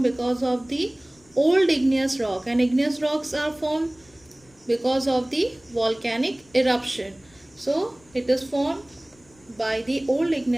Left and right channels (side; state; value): left; noise; rumble, 30 dB below the sound